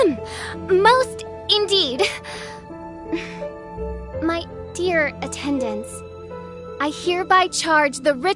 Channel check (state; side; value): identical; both; correlation 1.00